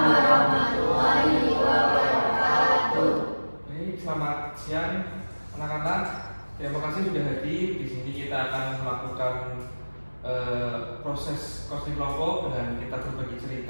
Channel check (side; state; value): both; inverted; correlation -1.00